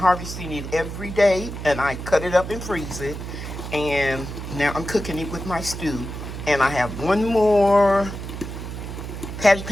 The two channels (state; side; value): noise; right; hum, 8 dB below the sound